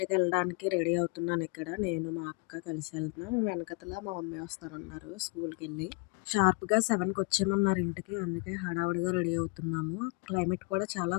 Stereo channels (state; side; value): quieter; right; 33.4 dB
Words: వెళ్ళడానికి రెడీ అవుతున్నాను. ఇక్కడ నేను మా అక్క కలిసి వెళ్తున్నాం. వెనకతల మా మమ్మీ వస్తానన్నారు స్కూల్ కి వెళ్ళి. షార్ప్ గా 7 కి వచ్చేయమన్నారు ఇంటికి. అందుకే హడావుడిగా రెడీ అవుతున్నాము. క్లైమేట్ కూడా చాలా